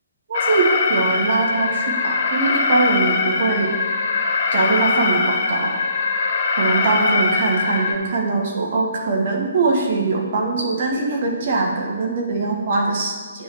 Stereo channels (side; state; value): both; inverted; correlation -0.63